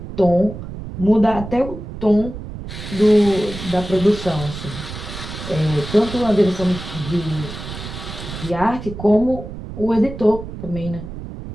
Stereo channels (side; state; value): right; noise; rumble, 10 dB below the sound